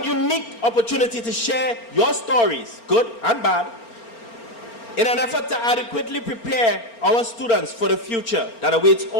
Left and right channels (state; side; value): late; right; 4.4 ms